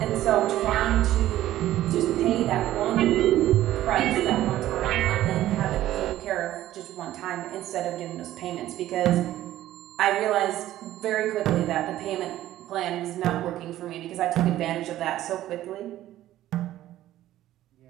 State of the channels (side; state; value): left; quieter; 13.9 dB